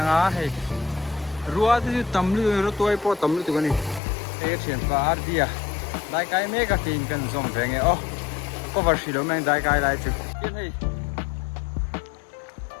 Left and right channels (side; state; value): right; drops out; at 4.0 s